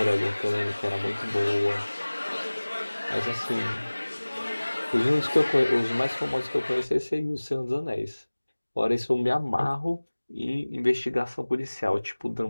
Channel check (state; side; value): inverted; both; correlation -1.00